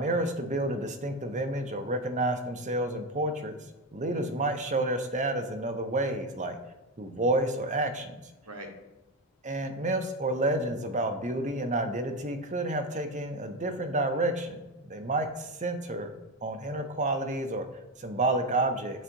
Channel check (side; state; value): both; normal; correlation 0.14